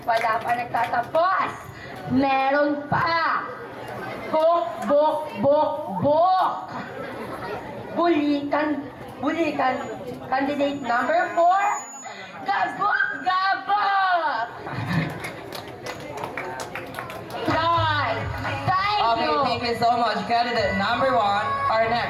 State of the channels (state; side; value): identical; both; correlation 1.00